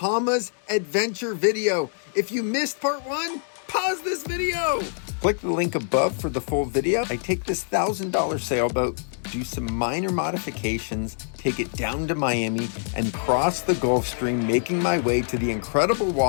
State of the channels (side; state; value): right; silent; digital silence